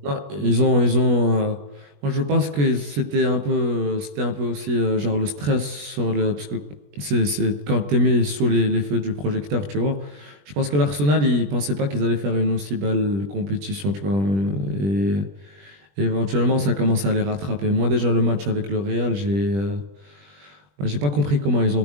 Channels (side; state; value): left; late; 20 ms